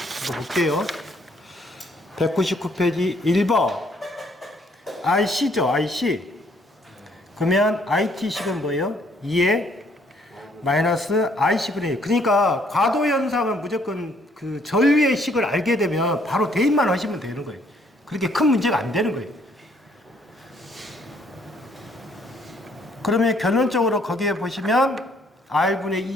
볼게요. 199페이지 1번 IC죠, IC. 그러면 IT식은 뭐예요? 2에 마이너스 IC분의 1. 그러니까 과도현상은 무조건 그 전류의 식을 알게 되면 바로 대입만 하시면 되는 거예요. 그렇게 큰 문제가 안 되는 거예요. 그러면 결론적으로 거기에 보시면 R분의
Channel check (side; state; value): both; normal; correlation 0.66